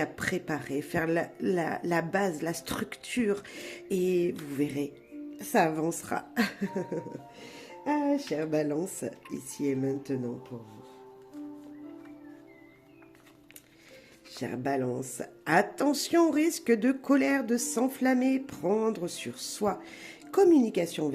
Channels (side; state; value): both; identical; correlation 1.00